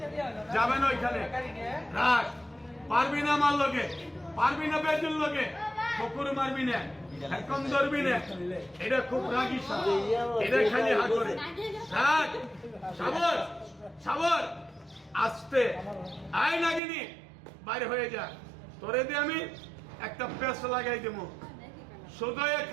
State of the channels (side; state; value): left; drops out; at 16.8 s